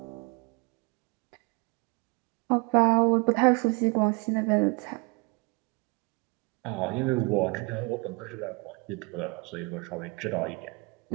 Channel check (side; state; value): left; quieter; 28.9 dB